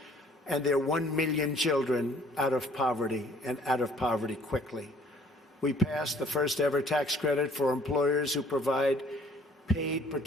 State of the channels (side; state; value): both; normal; correlation 0.58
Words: and their 1 million children out of poverty, and out of poverty quickly. We passed the first ever tax credit for employers who provide paid